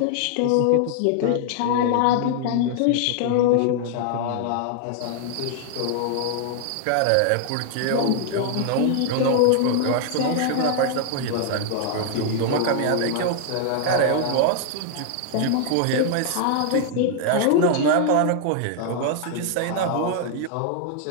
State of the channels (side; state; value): both; different; correlation 0.00